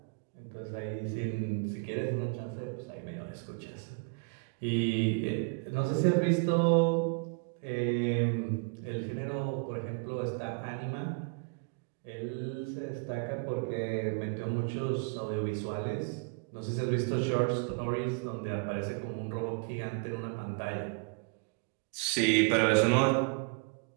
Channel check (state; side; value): quieter; left; 34.7 dB